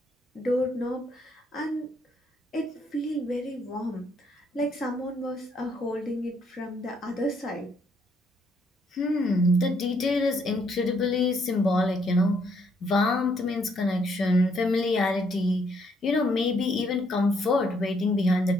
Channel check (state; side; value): normal; both; correlation 0.70